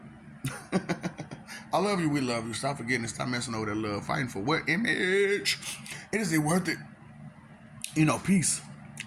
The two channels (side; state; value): both; identical; correlation 1.00